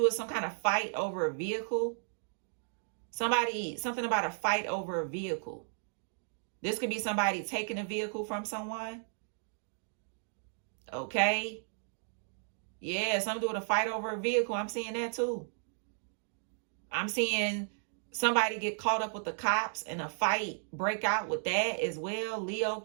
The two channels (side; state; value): left; silent; digital silence